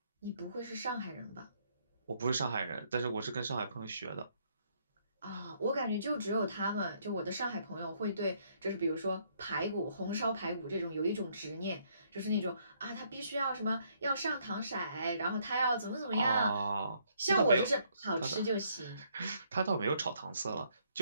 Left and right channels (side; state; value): both; inverted; correlation -0.69